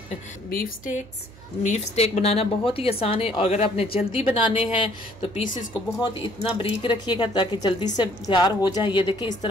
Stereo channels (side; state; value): right; noise; hum, 21 dB below the sound